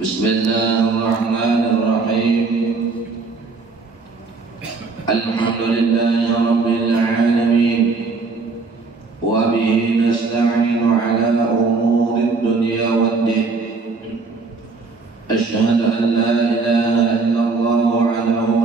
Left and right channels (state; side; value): quieter; left; 4.2 dB